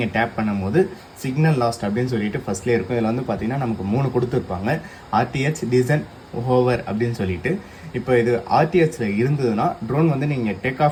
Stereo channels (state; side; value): identical; both; correlation 1.00